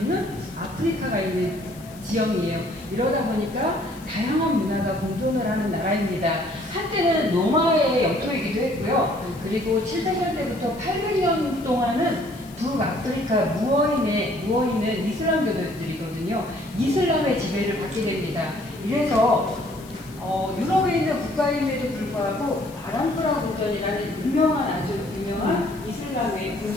아프리카가 있는 지형이에요. 이러다 보니까 다양한 문화가 공존을 하는 나라입니다. 한때는 로마의 영토이기도 했고요. 그리고 700년대부터 800년 동안은 북아프리카 무어인은 이슬람교도들이거든요. 이슬람의 지배를 받게 됩니다. 이래서 유럽에 있는 국가임에도 불구하고 아람프라 궁전이라는 아주 유명한 이슬람의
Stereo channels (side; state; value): left; noise; hiss, 22 dB below the sound